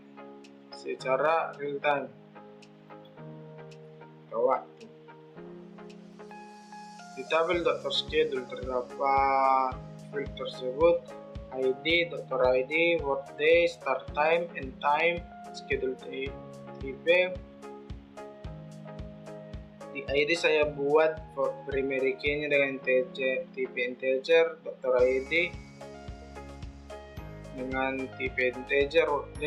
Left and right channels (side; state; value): both; identical; correlation 1.00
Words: secara real time waktu. Di tabel dokter schedule terdapat field tersebut ID, dokter ID, workday, start time, end time, schedule tipe. Di ID saya buat primary key-nya dengan tipe integer, dokter ID dengan tipe integer,